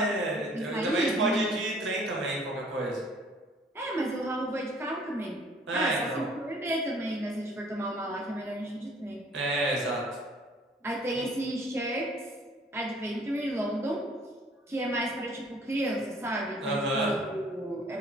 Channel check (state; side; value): normal; both; correlation 0.56